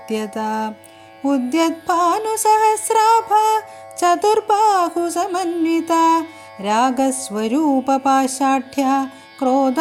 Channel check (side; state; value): both; identical; correlation 1.00